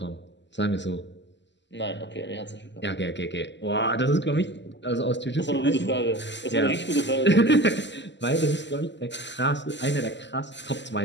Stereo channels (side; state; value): right; late; 0.52 ms